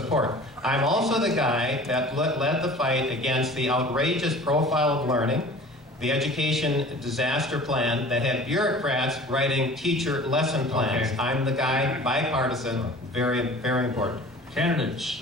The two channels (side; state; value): both; normal; correlation 0.43